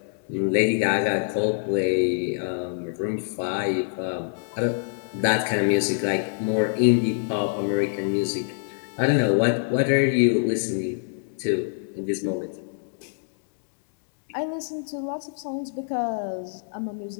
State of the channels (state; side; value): silent; right; digital silence